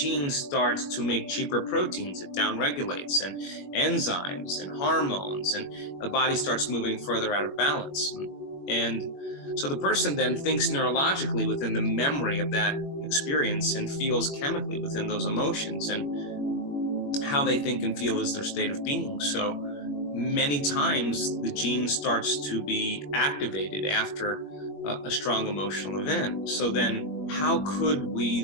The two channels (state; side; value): late; right; 21 ms